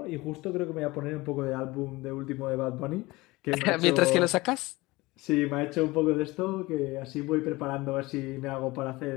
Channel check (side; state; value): right; quieter; 21.4 dB